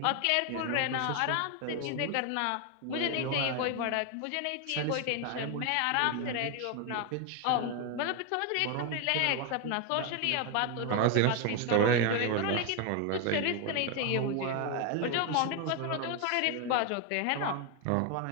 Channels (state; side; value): different; both; correlation 0.01